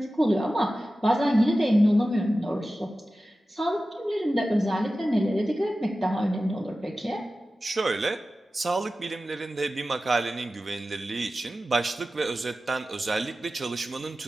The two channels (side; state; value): both; normal; correlation 0.95